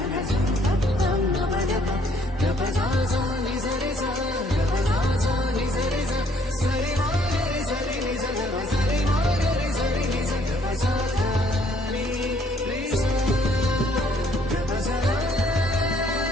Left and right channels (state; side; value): normal; both; correlation 0.64